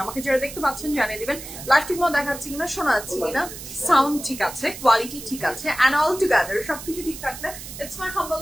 আমাকে যারা দেখতে পাচ্ছেন জানিয়ে দিবেন লাইভ ঠিক মতো দেখাচ্ছি কিনা, শোনা যাচ্ছে কিনা, সাউন্ড ঠিক আছে, কোয়ালিটি ঠিক আছে, and all together সবকিছু ঠিক থাকলে it's my humble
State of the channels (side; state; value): right; noise; hiss, 12 dB below the sound